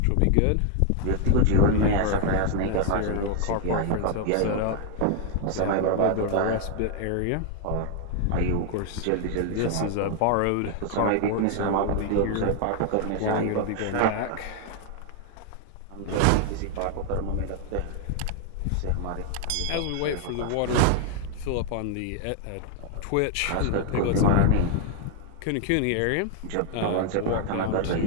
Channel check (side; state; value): both; different; correlation 0.00